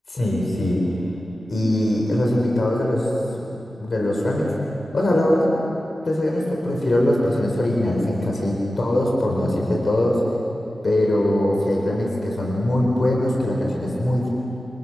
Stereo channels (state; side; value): normal; both; correlation 0.93